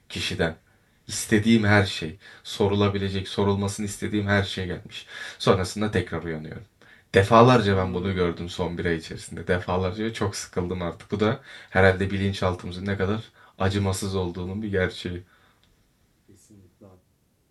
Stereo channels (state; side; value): identical; both; correlation 1.00